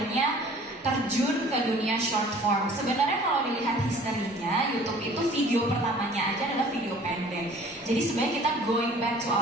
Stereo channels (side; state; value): both; normal; correlation 0.50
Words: terjun ke dunia short form? Sebenarnya kalau dilihat historinya, YouTube itu video pertamanya aja adalah video pendek. Jadi sebenarnya kita going back to